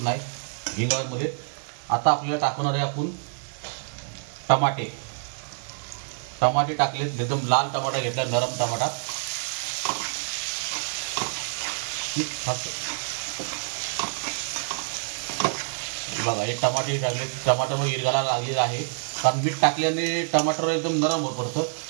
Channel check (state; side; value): silent; left; digital silence